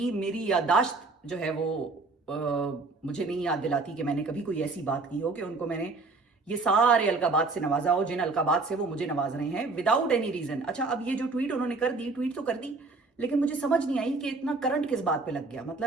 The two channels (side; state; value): left; quieter; 3.7 dB